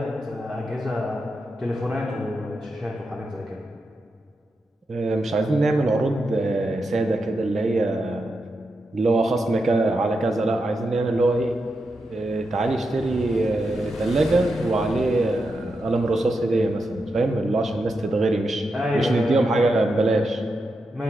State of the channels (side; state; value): both; normal; correlation 0.86